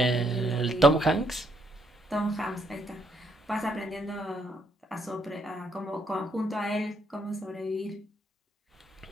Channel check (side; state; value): both; normal; correlation 0.73